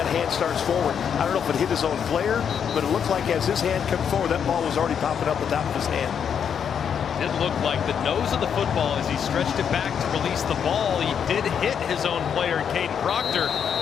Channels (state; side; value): quieter; right; 7.7 dB